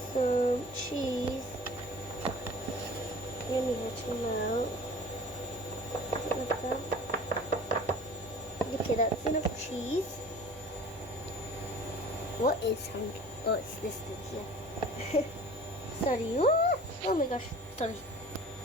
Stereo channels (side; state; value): both; normal; correlation 0.43